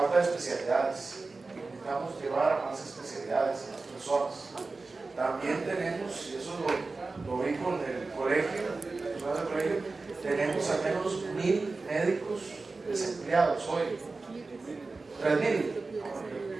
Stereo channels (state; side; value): quieter; left; 3.7 dB